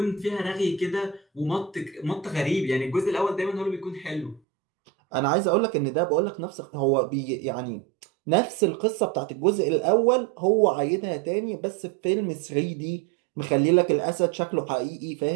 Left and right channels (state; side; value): drops out; left; at 4.4 s